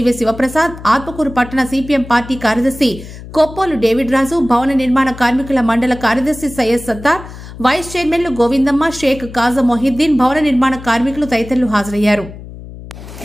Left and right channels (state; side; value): noise; left; hum, 14 dB below the sound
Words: శివప్రసాద్, ఆత్మకూరు పట్టణ సిపిఎం పార్టీ కార్యదర్శి కొప్పోలు డేవిడ్ రాజు, భవన నిర్మాణ కార్మికుల మండల కార్యదర్శి సయ్యద్ సత్తార్, వైస్ చైర్మన్లు గోవిందమ్మ, షేక్ కాజా మొహిద్దీన్, భవన నిర్మాణ కార్మికులు తదితరులు హాజరయ్యారు.